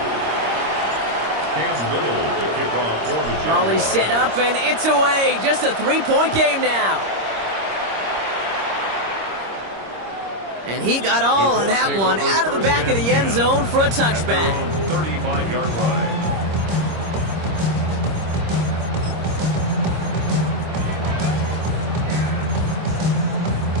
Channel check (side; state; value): left; late; 26 ms